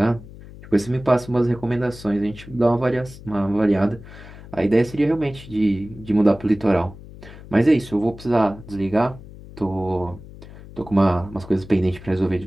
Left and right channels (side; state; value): left; noise; hum, 17 dB below the sound